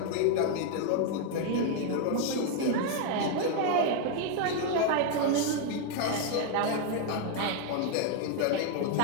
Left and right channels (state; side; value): different; both; correlation 0.00